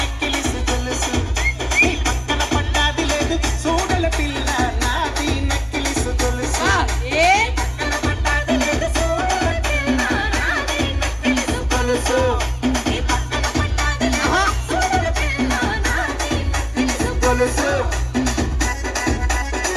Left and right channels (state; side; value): identical; both; correlation 1.00